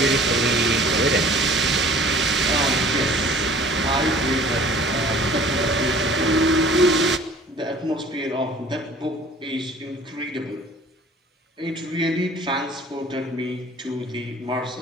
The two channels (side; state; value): both; normal; correlation 0.49